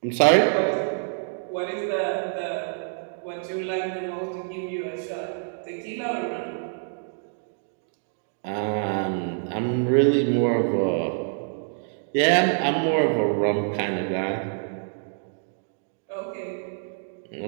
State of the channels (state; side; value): silent; left; digital silence